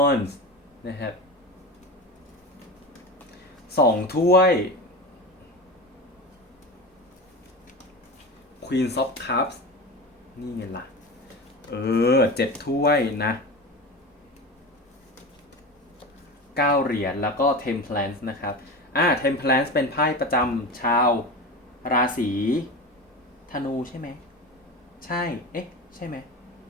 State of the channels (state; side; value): normal; both; correlation 0.27